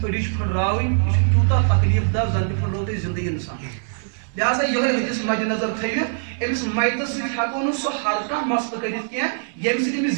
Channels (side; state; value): left; silent; digital silence